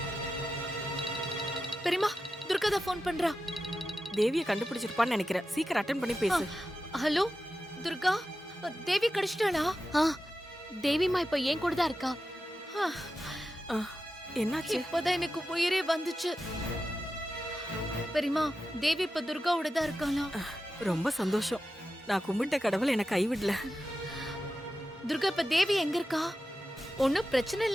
பெரியம்மா துர்கா தான் ஃபோன் பண்றா. தேவிய கண்டுபிடிச்சிருப்பான்னு நினைக்கிறேன். சீக்கிரம் அட்டெண்ட் பண்ணி பேசு. ஹலோ துர்கா, தேவி கிடைச்சிட்டாளா? தேவிமா இப்ப ஏன் கூட தான் இருக்கா. என்னாச்சு? இப்பதான் எனக்கு உயிரே வந்துச்சு. பெரியம்மா தேவி இப்ப துர்காவோட தான் இருக்காளா? ரொம்ப சந்தோஷம். நான் கும்பிட்ட கடவுள் என்னை கைவிடல. துர்கா இப்ப தேவி எங்க இருக்கா? ஒன்னும் பிரச்சனை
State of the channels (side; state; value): both; normal; correlation 0.91